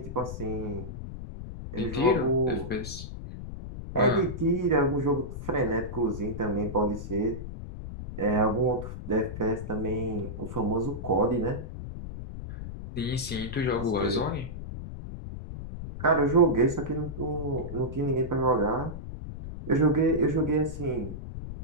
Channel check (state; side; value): noise; left; rumble, 9 dB below the sound